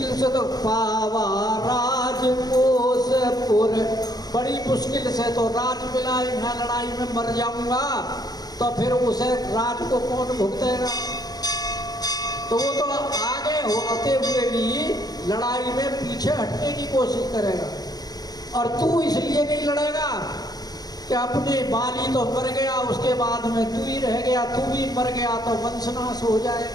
से तो पावा राजकोसपुर, बड़ी मुश्किल से तो राज मिला, यहाँ लड़ाई में मर जाऊंगा तो फिर उसे राज को कौन भुगतेगा। तो वो तो आगे होते हुए भी लड़ाई में पीछे हटने की कोशिश करेगा। और तू इसलिए नहीं लड़ेगा कि अपने बाली तो मर गया, उसके बाद में तू ही रह गया, तू भी मर गया तो वंशनाश हो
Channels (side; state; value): right; late; 0.19 ms